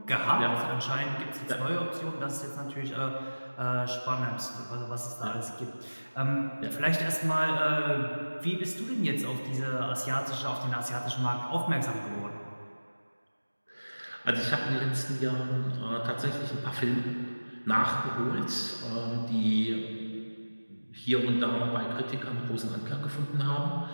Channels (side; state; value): both; inverted; correlation -1.00